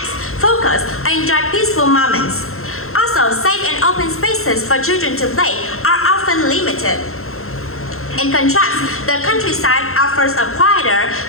focus, and enjoy peaceful moments. Also, safe and open spaces for children to play are often limited. In contrast, the countryside offers a quieter,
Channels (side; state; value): right; late; 0.62 ms